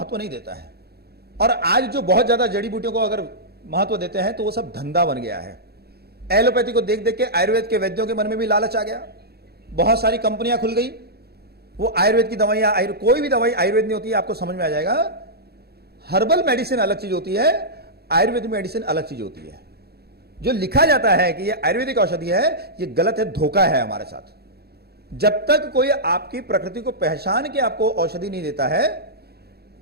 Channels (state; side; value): late; left; 0.46 ms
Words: नहीं देता है। और आज जो बहुत ज्यादा जड़ी बूटियों को अगर महत्व देते हैं तो वो सब धंधा बन गया है। एलोपैथी को देख देख के आयुर्वेद के वैद्यों के मन में भी लालच आ गया। बहुत सारी कंपनियां खुल गई, वो आयुर्वेद की दवाइयां, कोई भी दवाई आयुर्वेद नहीं होती है, आपको समझ में आ जाएगा। हर्बल मेडिसिन अलग चीज होती है, आयुर्वेदिक मेडिसिन अलग चीज होती है। जो लिखा जाता है कि ये आयुर्वेदिक औषधि है, ये गलत है, धोखा है हमारे साथ। जब तक कोई आपकी प्रकृति को पहचान के आपको औषधि नहीं देता है,